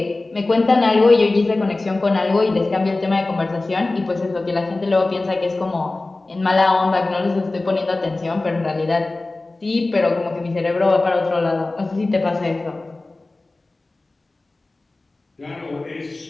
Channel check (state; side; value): quieter; right; 3.1 dB